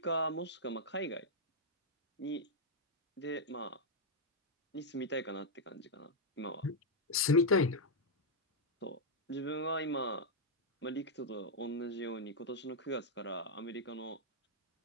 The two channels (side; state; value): both; normal; correlation -0.03